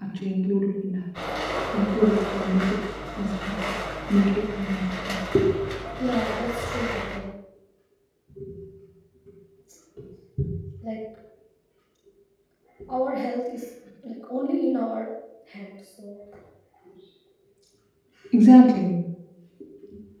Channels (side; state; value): both; identical; correlation 1.00